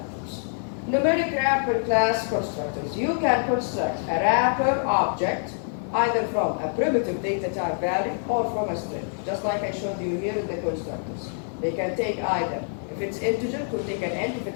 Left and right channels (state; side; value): silent; right; 61 dB below the other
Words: Numeric wrapper class constructors. You can construct a wrapper object either from a primitive data type value or from a string, just like I showed you here in the constructors. They can take either, if it's integer, it will take an int, if